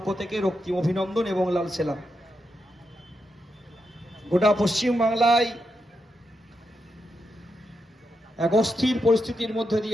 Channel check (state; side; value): normal; both; correlation 0.85